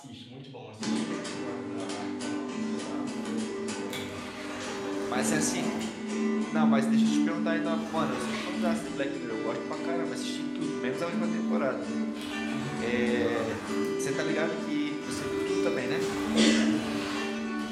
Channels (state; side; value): identical; both; correlation 1.00